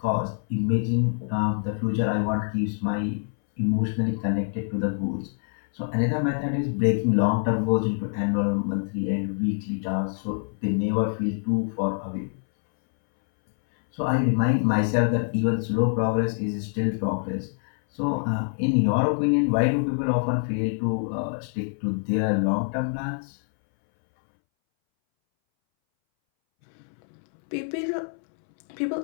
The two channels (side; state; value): right; silent; 61 dB below the other